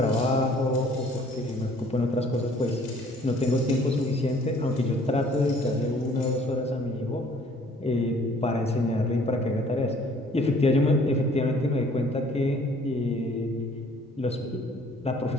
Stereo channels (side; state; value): both; normal; correlation 0.57